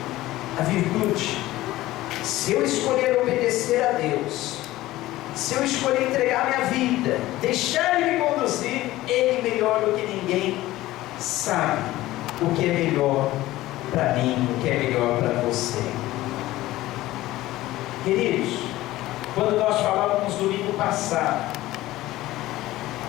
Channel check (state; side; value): quieter; right; 16.6 dB